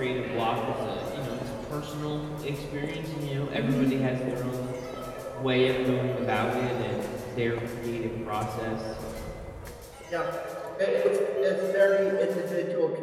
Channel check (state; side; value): identical; both; correlation 1.00